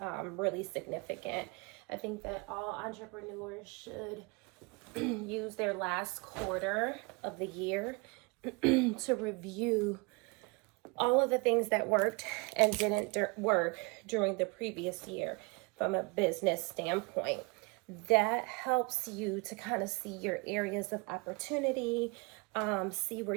really significant. I think that all entrepreneurs should use their last quarter of the year to review all of the things that worked and didn't work during the previous year from a business standpoint. That helps you to kind of see your areas of opportunity, see where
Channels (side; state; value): left; quieter; 29.0 dB